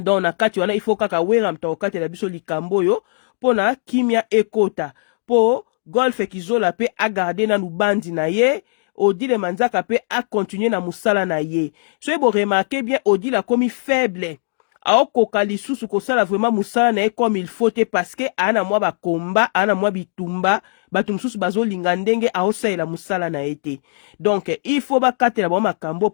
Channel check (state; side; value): silent; right; digital silence